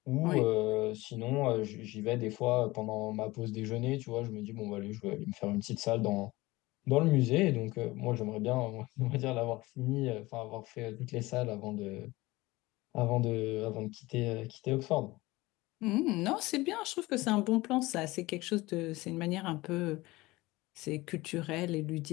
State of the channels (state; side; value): quieter; right; 20.3 dB